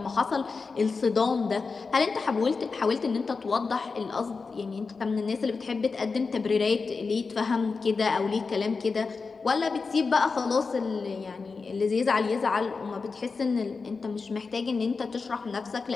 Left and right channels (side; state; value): right; quieter; 4.5 dB